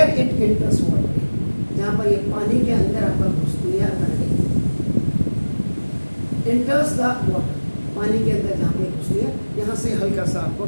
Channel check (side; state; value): both; inverted; correlation -1.00